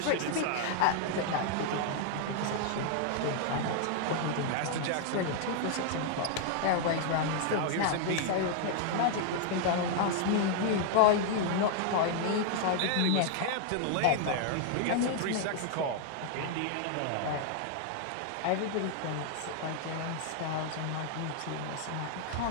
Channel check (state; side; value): different; both; correlation 0.00